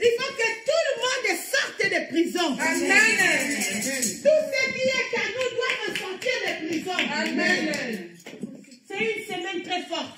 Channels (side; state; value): both; identical; correlation 1.00